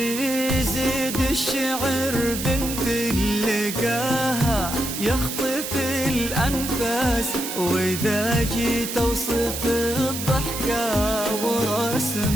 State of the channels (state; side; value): noise; right; hiss, 6 dB below the sound